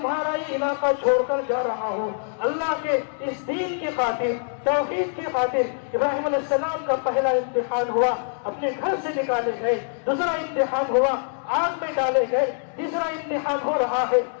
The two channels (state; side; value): silent; right; digital silence